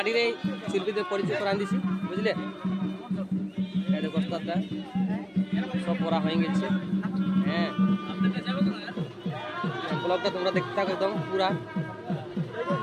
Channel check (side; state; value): both; identical; correlation 1.00